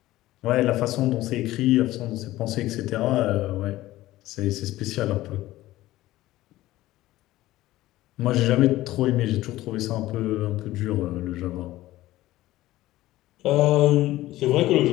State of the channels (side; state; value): right; quieter; 16.3 dB